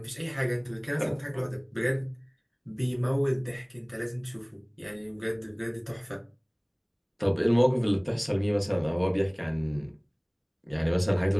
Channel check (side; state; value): both; identical; correlation 1.00